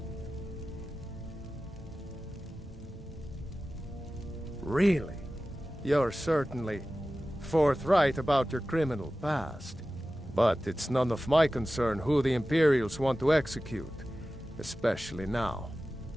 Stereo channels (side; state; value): both; normal; correlation 0.95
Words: Really? You're certainly forthright about your criminal past. But it's none of my concern who the Imperials want to execute, especially now.